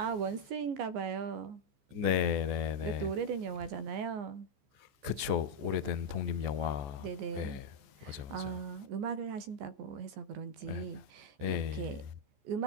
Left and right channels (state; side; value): late; left; 14 ms